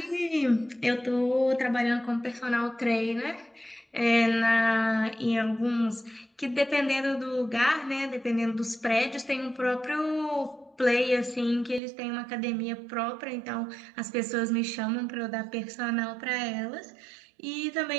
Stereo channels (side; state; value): left; drops out; at 11.8 s